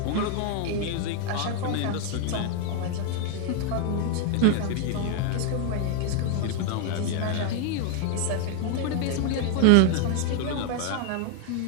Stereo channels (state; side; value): different; both; correlation 0.00